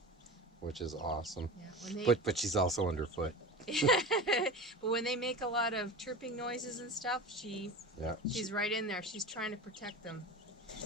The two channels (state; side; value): normal; both; correlation 0.30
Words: which is awesome. Yeah, But she's also underfoot. but when they make a lot of chirping noises and stuff, she's right in there. She's trying to protect them.